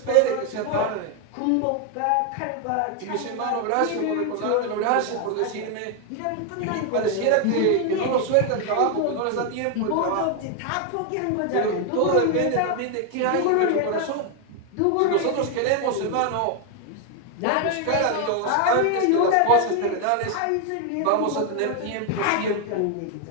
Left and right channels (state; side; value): different; both; correlation 0.00